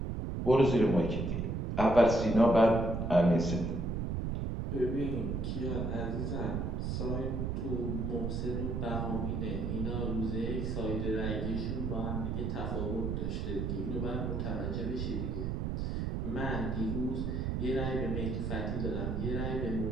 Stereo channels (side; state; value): right; noise; rumble, 1 dB below the sound